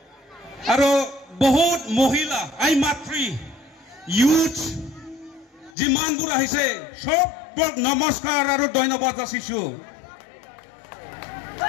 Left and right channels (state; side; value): drops out; right; at 5.7 s